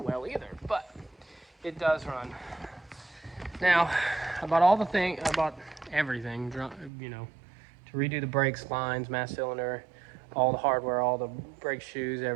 well either, but it does run. Now, I bought everything, you know, to redo the brakes, lines, mass cylinder, all the hardware, all the brake shoes,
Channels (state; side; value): drops out; left; at 6.9 s